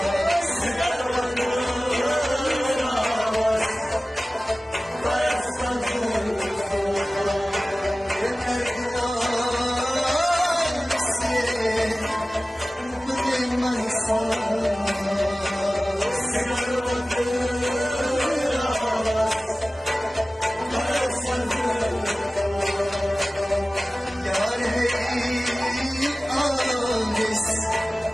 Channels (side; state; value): both; normal; correlation 0.97